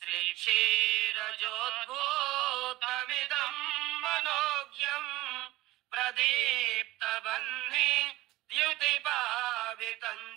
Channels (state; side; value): quieter; left; 18.0 dB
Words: मनोज्ञम् प्रदीप्तबह्नि द्युतिपावितं